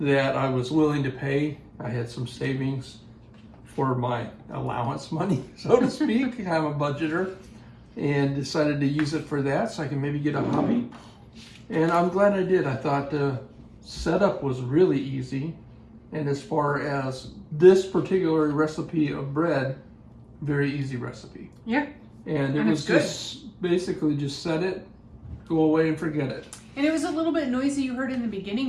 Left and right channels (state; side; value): identical; both; correlation 1.00